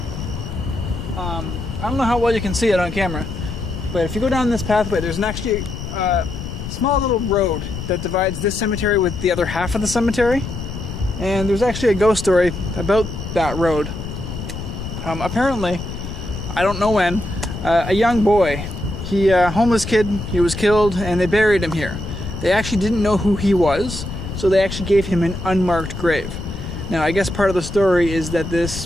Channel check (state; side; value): noise; left; rumble, 8 dB below the sound